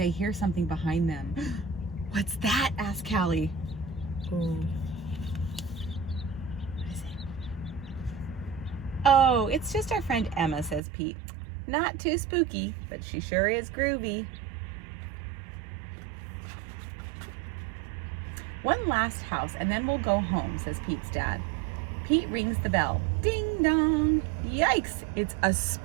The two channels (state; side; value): drops out; left; at 10.8 s